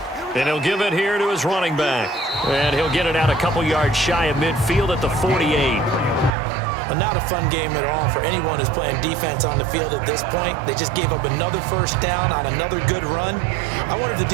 And he'll give it here to his running back. And he'll get it out a couple yards shy of midfield at the 48. And not a fun game at all for anyone who's playing defense on the field at this point. They just gave up another first down on another good run. I wonder if the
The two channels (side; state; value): left; drops out; at 6.4 s